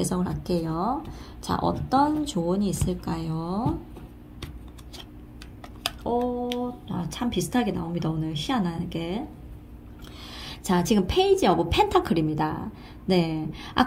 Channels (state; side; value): identical; both; correlation 1.00